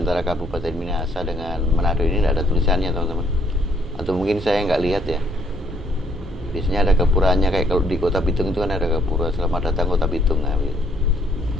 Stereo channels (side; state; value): both; normal; correlation 0.67